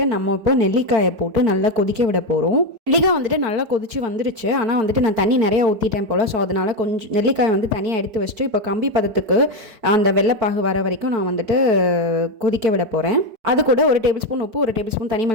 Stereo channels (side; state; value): left; late; 4.5 ms